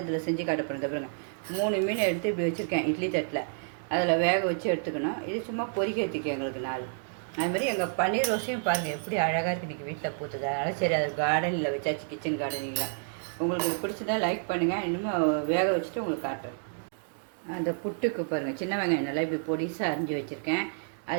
இதில் செஞ்சு காட்ட போகிறேன். பாருங்கள், 3 மீன் எடுத்து இப்படி வச்சுருக்கேன் இட்லி தட்டில். அதில் வேக வச்சு எடுத்துக்கணும். இது சும்மா பொரிக்கிறதுக்கு எங்களுக்கு 4. அதுமாதிரி எங்கள் பன்னீர் ரோஸையும் பாருங்கள் எப்படி அழகாக இருக்குது. இன்றைக்கி வீட்டில் பூத்துது, அதனால் சரி அது கார்டனில் வச்சாச்சு, கிச்சன் கார்டனிங்கில். உங்களுக்கு பிடிச்சதா லைக் பண்ணுங்கள். இன்னும் வேக வச்சுட்டு உங்களுக்கு காட்டுறேன். அந்த புட்டுக்கு பாருங்கள், சின்ன வெங்காயம் நல்லா இப்படி பொடிசாக அரிஞ்சு வச்சுருக்கேன்.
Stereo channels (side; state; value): left; silent; digital silence